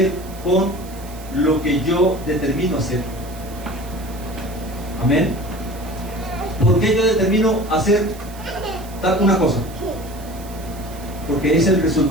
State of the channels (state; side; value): noise; right; hiss, 19 dB below the sound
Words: con lo que yo determino hacer. Amén. ¿Por qué yo determino hacer tal una cosa? Porque es el